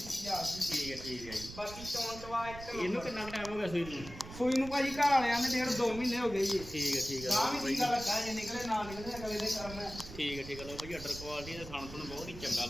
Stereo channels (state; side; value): noise; right; rumble, 13 dB below the sound